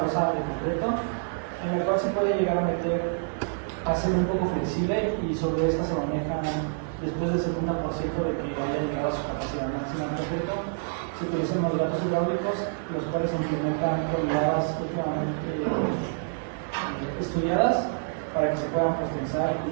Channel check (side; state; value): left; silent; 60 dB below the other